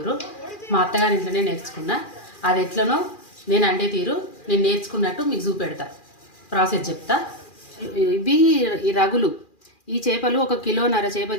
మా అత్తగారి ఇంట్లోనే నేర్చుకున్నా. అది ఎట్లనో నేను అండే తీరు నేను నేర్చుకున్నట్టు మీకు చూపెడతా, ప్రాసెస్ చెప్తా. ఇవి ఈ రగులు. ఈ చేపలు 1.5 కిలో చేప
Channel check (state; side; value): late; right; 2.4 ms